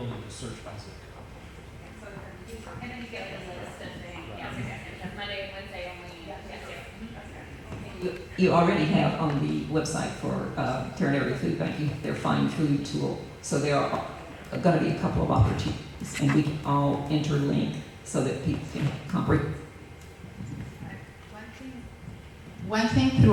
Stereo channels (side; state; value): both; identical; correlation 1.00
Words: to search by zip code. And then you get like a list of things. Yes, that's Monday, Wednesday only. Yes, You already have on the website for Terran Area Food Bank, you have their Find Food tool. So there are going to be a couple of opportunities, and we can all interlink so that people can comprehend. One thing